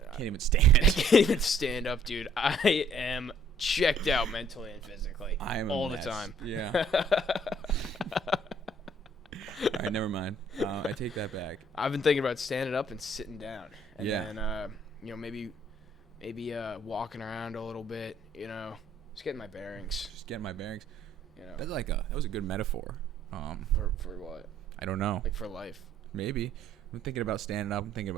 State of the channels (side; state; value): both; normal; correlation 0.61